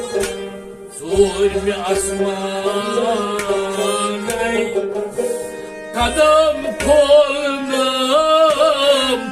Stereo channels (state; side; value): identical; both; correlation 1.00